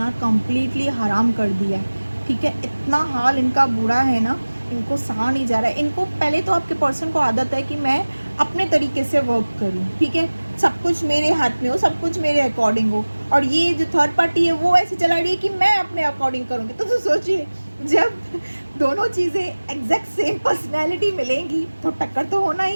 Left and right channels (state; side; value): inverted; both; correlation -1.00